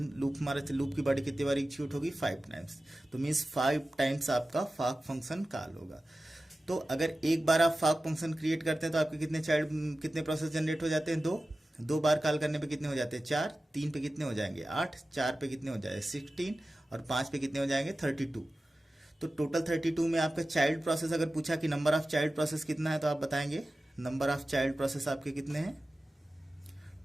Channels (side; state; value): both; normal; correlation 0.95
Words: लूप की बॉडी कितनी बार एग्जीक्यूट होगी, 5 टाइम्स। तो मीन्स 5 टाइम्स आपका फॉक फंक्शन कॉल होगा। तो अगर एक बार आप फॉक फंक्शन क्रिएट करते हैं तो आपके कितने प्रोसेस जनरेट हो जाते हैं, 2 बार कॉल करने पे कितने हो जाते हैं, 4, 3 पे कितने हो जाएंगे, 8, 4 पे कितने हो जाएंगे, 16, और 5 पे कितने हो जाएंगे, 32। तो टोटल 32 में आपका चाइल्ड प्रोसेस अगर पूछा कि नंबर ऑफ चाइल्ड प्रोसेस कितना है, तो आप बताएंगे नंबर ऑफ चाइल्ड प्रोसेस आपके कितने हैं,